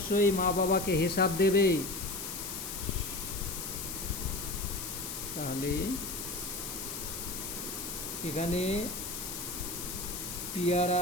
মা বাবাকে হিসাব দেবে। তাহলে এখানে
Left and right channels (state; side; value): noise; left; hiss, 6 dB below the sound